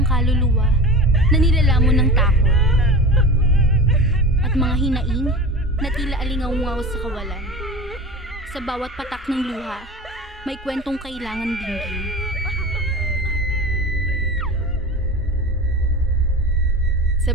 kaluluwa na nilalamon ng takot. At mga hinaing na tila alingaw-ngaw sa kawalan. Sa bawat patak ng luha, may kwentong kailangan dinggin. Sa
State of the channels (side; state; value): both; normal; correlation 0.32